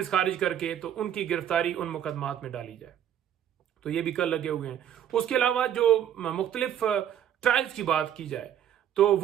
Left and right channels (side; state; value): left; quieter; 10.0 dB